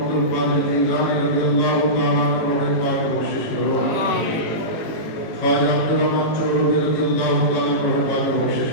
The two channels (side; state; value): right; late; 18 ms